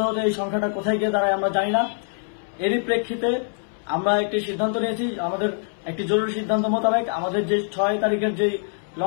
হতে এই সংখ্যাটা কোথায় গিয়ে দাঁড়ায় আমরা জানি না। এরই প্রেক্ষিতে আমরা একটি সিদ্ধান্ত নিয়েছি। আমাদের একটি জরুরি সিদ্ধান্ত মোতাবেক আমাদের যে 6 তারিখের যে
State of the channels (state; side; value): silent; right; 63 dB below the other